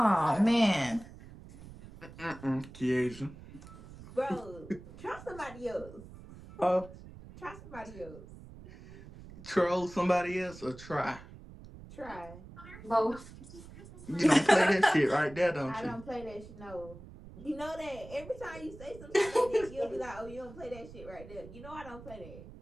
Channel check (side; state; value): right; noise; rumble, 16 dB below the sound